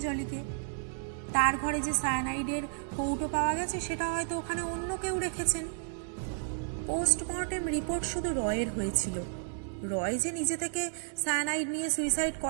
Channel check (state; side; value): silent; left; digital silence